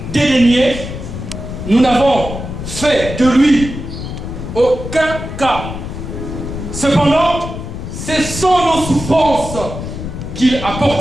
dédaigné, nous n'avons fait de lui aucun cas. Cependant, ce sont nos souffrances qu'il a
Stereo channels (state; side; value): noise; left; rumble, 8 dB below the sound